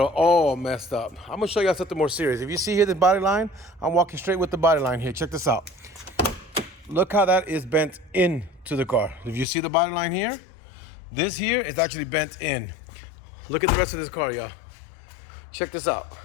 messed up. I'm gonna show y'all something more serious. If you see here the body line, I'm walking straight with the body line here. Check this out. Look how that is bent into the car. If you see the body line here, this here is actually bent in. Look at the rest of this car, y'all. Check this out.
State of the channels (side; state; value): right; drops out; at 9.5 s